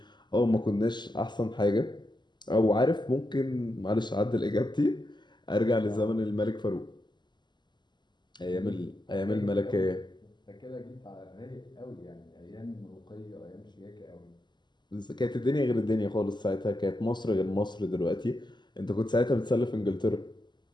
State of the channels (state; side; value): late; right; 0.21 ms